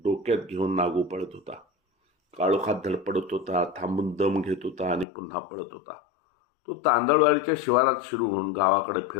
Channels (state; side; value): drops out; right; at 5.1 s